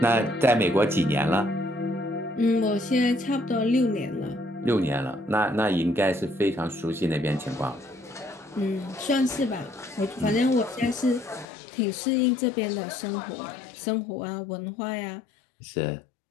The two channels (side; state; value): right; drops out; at 11.5 s